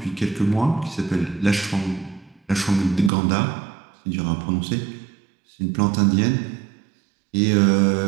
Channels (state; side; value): drops out; left; at 3.1 s